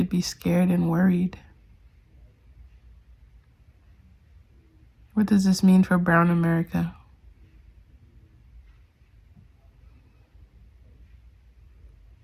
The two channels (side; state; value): both; identical; correlation 1.00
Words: be scared and worried. What does this mean for brown America?